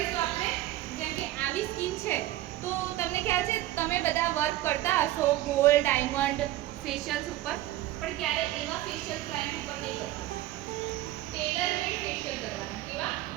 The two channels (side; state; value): left; quieter; 15.1 dB